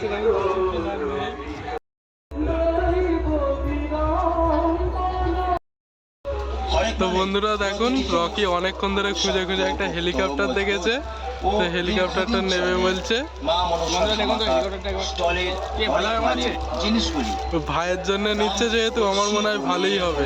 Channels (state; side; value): identical; both; correlation 1.00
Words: তো বন্ধুরা দেখুন, রকি অনেকক্ষণ ধরে খুঁজে খুঁজে একটা হেলিকপ্টার দেখেছে, তো হেলিকপ্টারটা নেবে বলছে। ভাইয়ের জন্য নিচ্ছে যেহেতু, আমার মনে হয় ভালোই হবে।